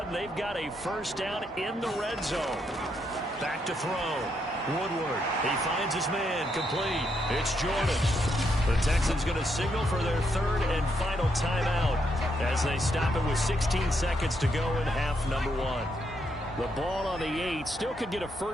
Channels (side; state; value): both; normal; correlation 0.77